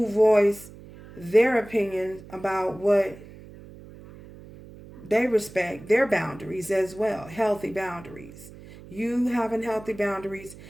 voice their opinion about what they respect, their boundaries as well, healthy boundaries. You having healthy boundaries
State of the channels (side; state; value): right; noise; hum, 18 dB below the sound